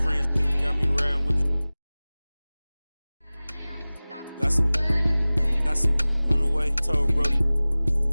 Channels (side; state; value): both; inverted; correlation -0.99